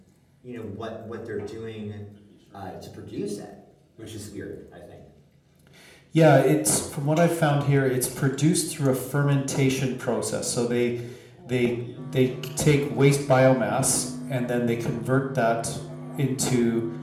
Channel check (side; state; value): both; identical; correlation 1.00